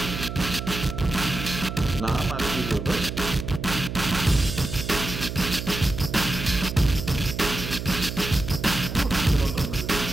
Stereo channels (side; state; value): right; noise; hum, 6 dB below the sound